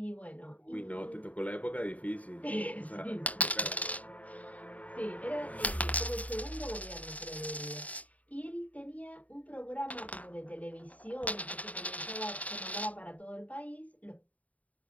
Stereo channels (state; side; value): late; right; 0.070 ms